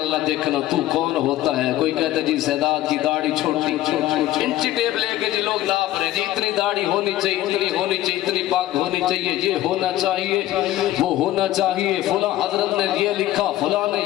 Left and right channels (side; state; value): right; quieter; 14.5 dB